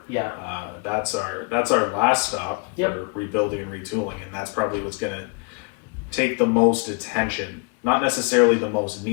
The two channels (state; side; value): quieter; right; 32.2 dB